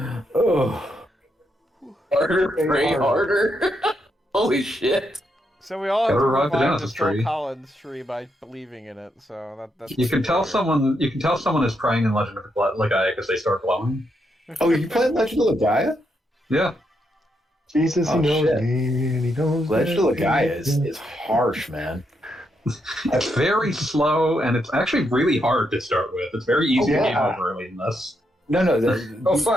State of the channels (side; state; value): both; normal; correlation 0.80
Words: Oh, Harder, pray harder. Holy shit. So we all have to Gotta revive the revive the Genesis Phil tree. Collins tree by believing in it. So that's You can tell someone is praying in Legend of Legaia because they start glowing. oh, you playing Legend of Legaia? Yeah. Jesus, he Oh, knows shit. me, and he knows Legend of that Legaia he- is harsh, man. It's very slow, and it's actually really hard to start with. It's very easy to game yeah. over early in this. No, Oh,